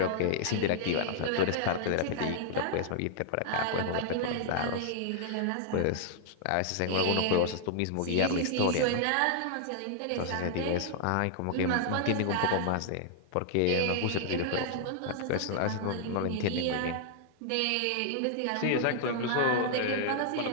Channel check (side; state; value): both; different; correlation -0.01